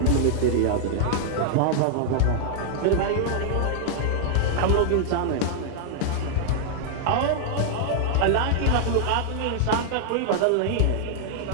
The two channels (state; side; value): different; both; correlation -0.01